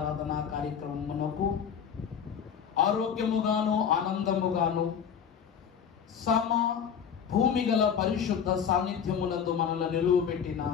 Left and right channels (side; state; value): right; quieter; 7.6 dB